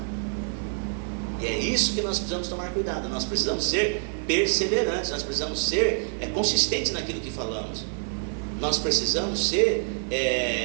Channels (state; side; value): silent; left; 60 dB below the other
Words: E é isso que nós precisamos tomar cuidado. Nós precisamos ser perseverantes, nós precisamos ser consistentes naquilo que falamos. Nós precisamos ser